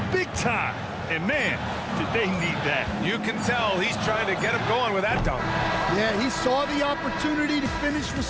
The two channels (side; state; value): both; identical; correlation 1.00